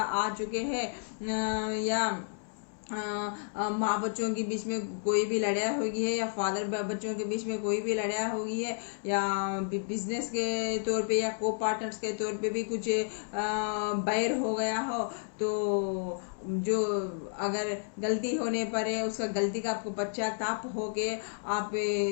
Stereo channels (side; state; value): right; silent; digital silence